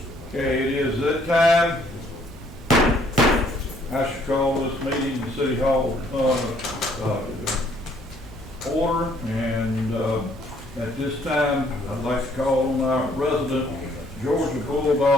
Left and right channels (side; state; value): both; normal; correlation 0.64